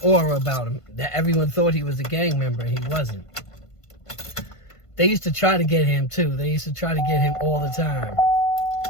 aura about him that everyone thought he was a gang member and he wasn't. They used to try to get him too. They used to try to get him all the time.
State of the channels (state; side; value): late; right; 1.5 ms